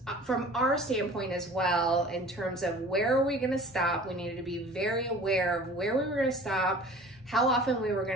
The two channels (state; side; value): normal; both; correlation 0.45